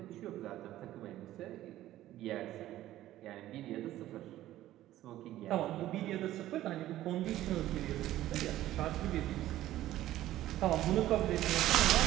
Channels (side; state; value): left; quieter; 14.2 dB